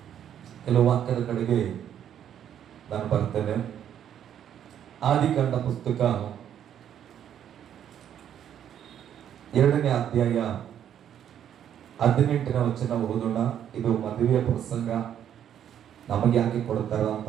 ಕೆಲವು ವಾಕ್ಯದ ಕಡೆಗೆ ನಾನು ಬರ್ತೇನೆ. ಆದಿಕಾಂಡ ಪುಸ್ತಕ 2ನೇ ಅಧ್ಯಾಯ 18ನೇ ವಚನ ಓದೋಣ. ಇದು ಮದುವೆಯ ಪ್ರಸಂಗ. ನಮಗೆ ಯಾಕೆ ಕೊಡ್ತಾರ ಅಂತ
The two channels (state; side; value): quieter; left; 9.8 dB